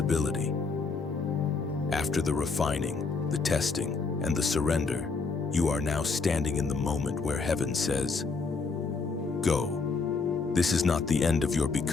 After the refining, the testing, and the surrender, you are now standing in the moment where heaven says, "Go." This is not the end of your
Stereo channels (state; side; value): quieter; right; 4.4 dB